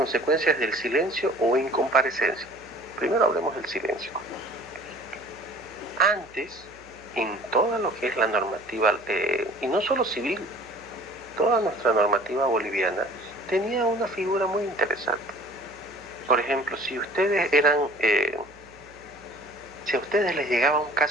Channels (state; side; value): noise; right; hum, 25 dB below the sound